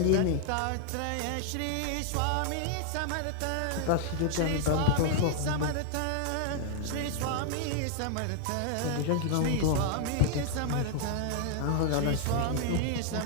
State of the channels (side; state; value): both; different; correlation 0.00